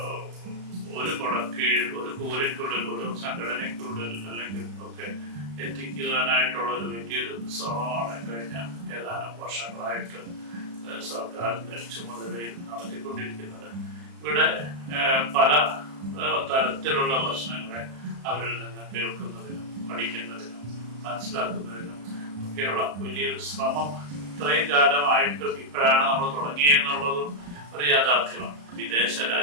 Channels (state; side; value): late; left; 35 ms